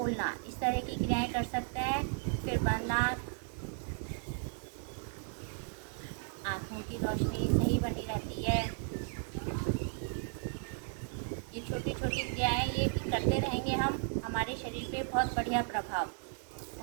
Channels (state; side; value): silent; left; 54 dB below the other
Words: इस तरह की क्रियाएं कर सकते हैं। फिर बंद आँखों की रोशनी सही बनी रहती है। ये छोटी छोटी क्रियाएं ये करते रहेंगे हम, हमारे शरीर पे बहुत बढ़िया प्रभाव।